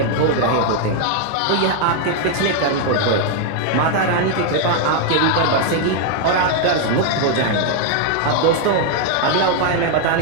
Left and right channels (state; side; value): different; both; correlation 0.00